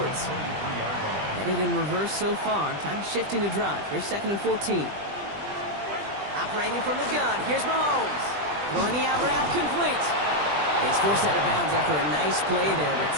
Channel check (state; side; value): late; left; 20 ms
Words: Headed in reverse so far. Time to shift into drive. Here's 2nd and 14. Operating from the gun. Here's Mahomes. Throwing the out route complete. He's forced out of bounds after a nice play there, but